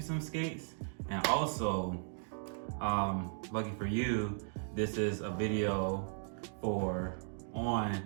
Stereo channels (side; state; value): left; silent; digital silence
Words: skates. And also, lucky for you, this is a video for on